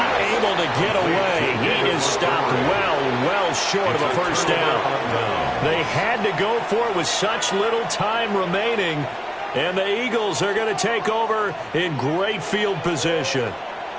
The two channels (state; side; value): identical; both; correlation 1.00